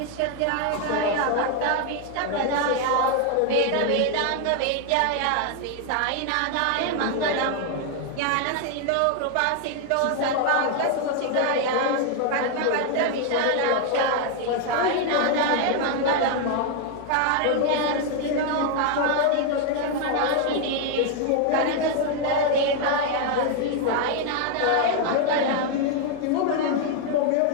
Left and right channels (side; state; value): both; different; correlation 0.00